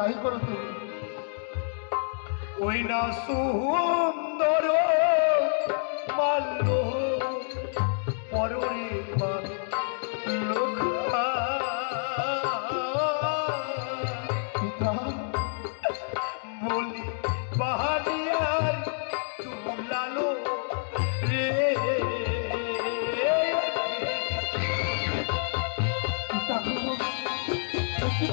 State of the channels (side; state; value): right; silent; digital silence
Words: করো তুমি। ওই না সুন্দর মাল্য পররে লোক পিতা বলি বাহালিয়ার তুলালো রে। পিতা গো, কি